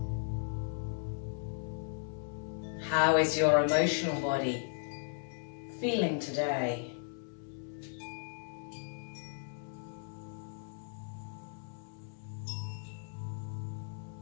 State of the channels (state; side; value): silent; right; digital silence